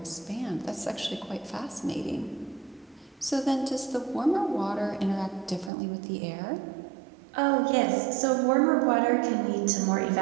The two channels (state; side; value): drops out; left; at 5.7 s